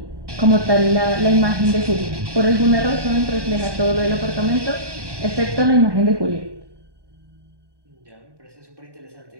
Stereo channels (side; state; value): left; late; 1.2 ms